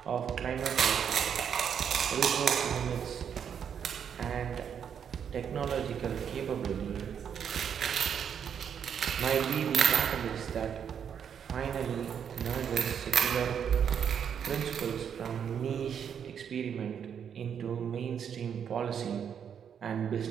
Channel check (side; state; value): left; quieter; 7.9 dB